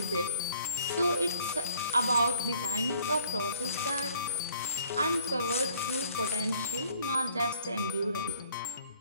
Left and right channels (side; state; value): both; inverted; correlation -0.60